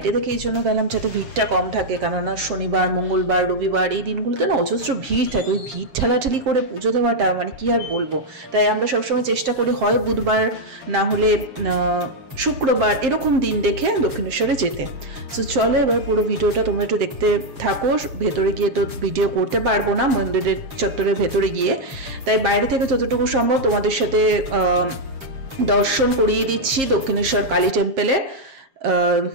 থেকে এই জন্য গেলাম যাতে ভিড়টা কম থাকে, কেননা শনিবার মঙ্গলবার রবিবার এই দিনগুলোতে না অজস্র ভিড় থাকে। ওই ভিড় ঠেলাঠেলি করে পুজো দেওয়াটা মানে কি আর বলবো। তাই আমরা সবসময় চেষ্টা করি হয় বুধবার না হলে শুক্রবার এরকম দিন দেখে দক্ষিণেশ্বরে যেতে। সো চলো এবার পুরো ভিডিওটা তোমরা একটু দেখতে থাকো। ভেতরে গিয়ে তো ভিডিও করতে পারবো না মন্দিরের চত্বরের ভেতরে গিয়ে, তাই বাইরে থেকে যতটুকু সম্ভব তোমাদের সাথে দর্শন করিয়ে দিচ্ছি দক্ষিণেশ্বর কালী টেম্পলে।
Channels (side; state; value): left; late; 7.5 ms